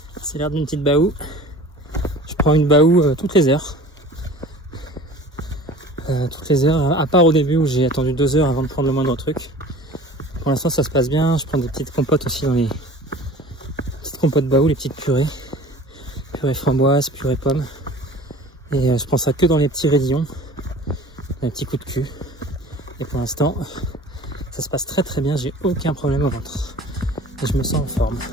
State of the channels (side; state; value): both; normal; correlation 0.43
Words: C'est l'air d'une petite baou. Je prends une baou toutes les heures. À part au début où j'ai attendu 2 heures avant de prendre le moindre truc. Pour l'instant ça se passe bien. Je prends des petites compotes aussi dans les petites compotes baou, les petites purées. Purée framboise, purée pomme. Et je prends ça que dans les petits raidillons. Les petits coups de cul. Et pour l'instant, ça se passe très très bien. J'ai aucun problème au ventre. Et je me sens en forme.